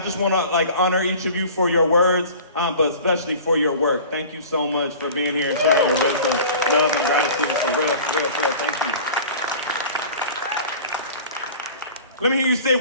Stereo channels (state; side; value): inverted; both; correlation -0.42